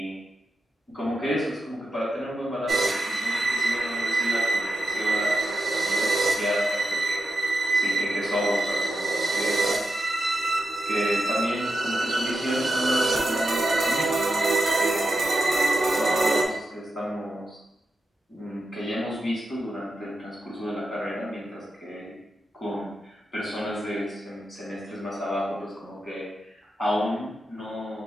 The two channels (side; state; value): both; normal; correlation 0.89